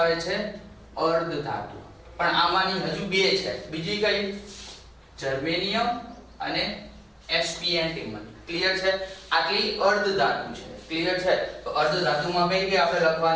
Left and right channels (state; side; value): identical; both; correlation 1.00